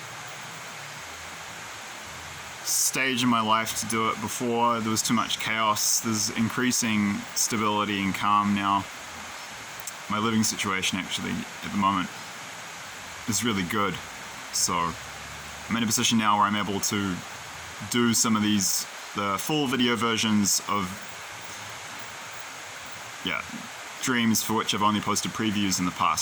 stage in my life to do it before. There was too much chaos. There's increasing stability and calm now. My living situation actually at the moment is really good. So I'm in a position now where I'm able to do some of the full video versions of dreams for which I've only posted previews in the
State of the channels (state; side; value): identical; both; correlation 1.00